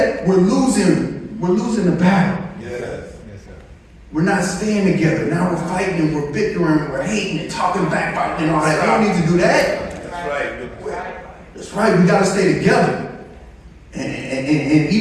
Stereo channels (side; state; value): both; identical; correlation 1.00